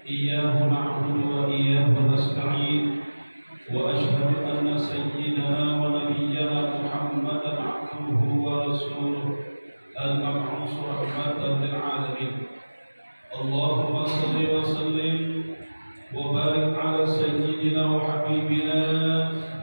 iyyahu na'budu wa iyyahu nasta'in. Wa asyhadu anna sayyidana wa nabiyyana Muhammadan 'abduhu wa rasuluhu al-mab'uts rahmatan lil 'alamin. Allahumma shalli wa sallim wa barik ala sayyidina wa habibina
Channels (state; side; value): inverted; both; correlation -1.00